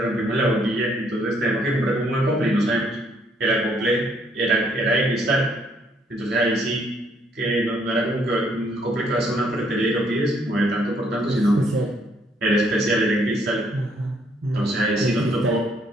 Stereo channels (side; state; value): both; normal; correlation 0.68